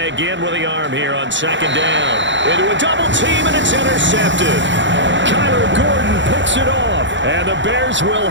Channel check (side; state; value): left; late; 0.54 ms